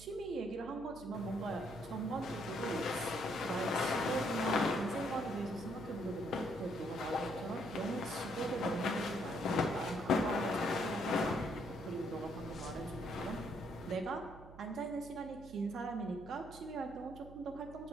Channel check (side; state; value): right; noise; hum, 17 dB below the sound